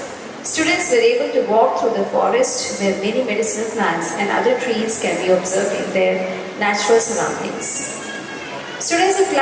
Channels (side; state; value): both; identical; correlation 1.00